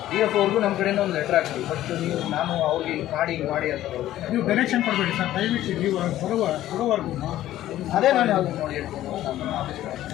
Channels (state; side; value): quieter; right; 13.6 dB